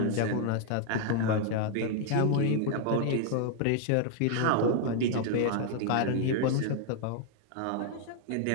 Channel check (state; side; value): different; both; correlation 0.00